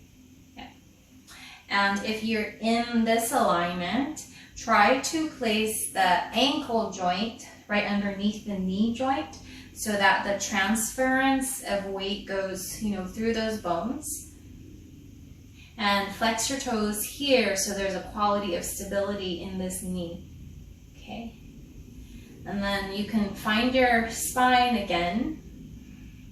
Yeah. And if you're in this alignment, try to place the ankle joint right underneath the knee joint so that the transference of weight goes, through those bones. And flex your toes here so there's a quality of stability in this knee. Okay. And then you can find your spine again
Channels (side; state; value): both; identical; correlation 1.00